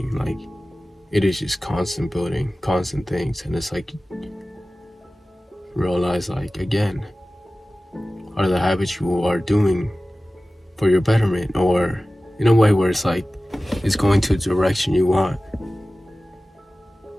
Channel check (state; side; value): normal; both; correlation 0.96